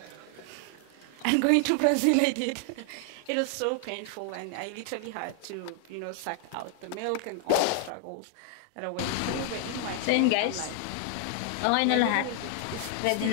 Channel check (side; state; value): both; different; correlation 0.00